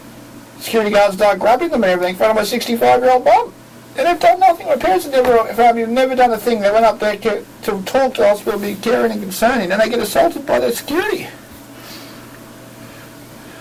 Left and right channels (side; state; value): both; identical; correlation 1.00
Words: Security guards start grabbing them and everything in front of my 65-year-old mum. And they've done nothing. My parents have never done a thing. They went up there to talk to the hospital, be caring and concerning, and they get assaulted by their security.